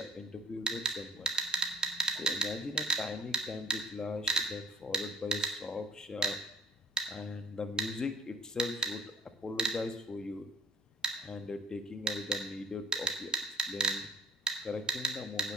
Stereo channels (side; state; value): both; normal; correlation 0.55